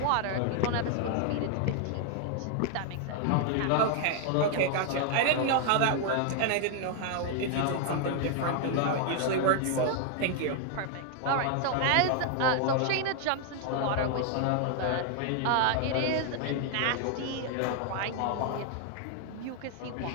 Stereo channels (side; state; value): both; different; correlation 0.00